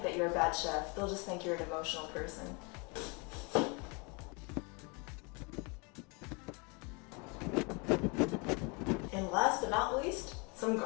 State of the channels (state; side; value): quieter; right; 30.5 dB